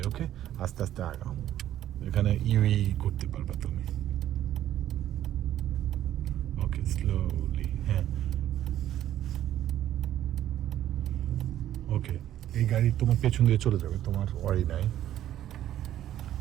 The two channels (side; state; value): left; quieter; 12.1 dB